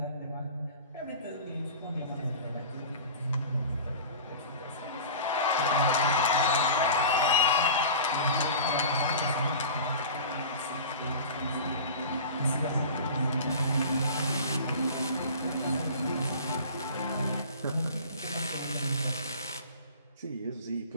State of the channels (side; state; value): both; inverted; correlation -0.37